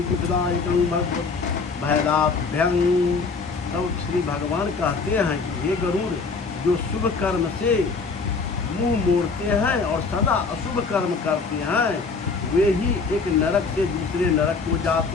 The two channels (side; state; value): right; quieter; 4.5 dB